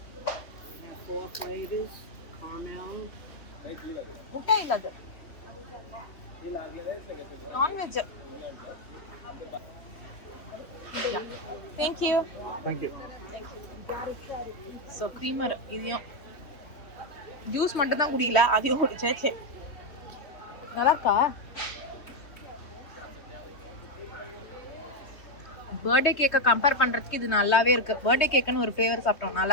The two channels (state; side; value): late; right; 3.2 ms